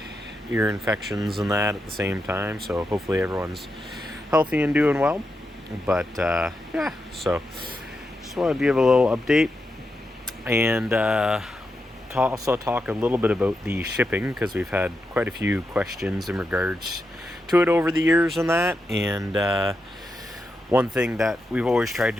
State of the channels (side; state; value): both; normal; correlation 0.86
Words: ear infections and that at the same time, so hopefully everyone's healthy and doing well. But yeah, so just wanted to give a little update and also talk a little bit about the shipping, because we've had quite a few questions in regards to it over the years and that. And one thing that we've always tried